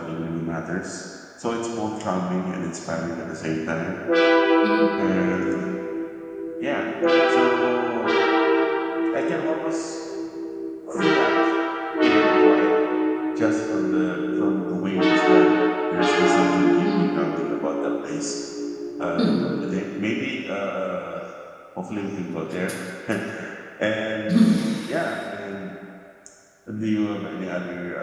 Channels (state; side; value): identical; both; correlation 1.00